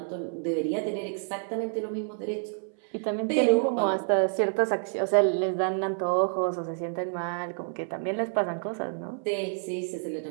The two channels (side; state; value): left; silent; 59 dB below the other